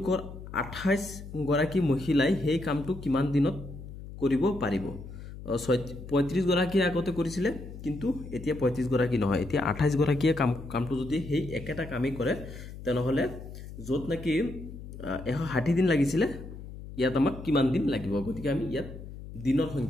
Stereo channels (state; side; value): noise; left; hum, 12 dB below the sound